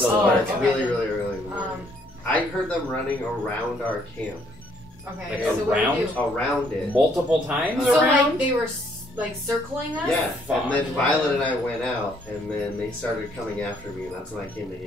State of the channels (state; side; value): normal; both; correlation 0.66